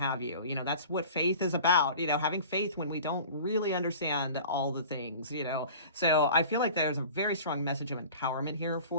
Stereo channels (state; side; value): inverted; both; correlation -0.41